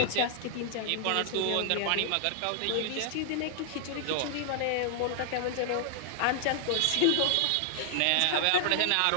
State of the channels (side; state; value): both; different; correlation -0.01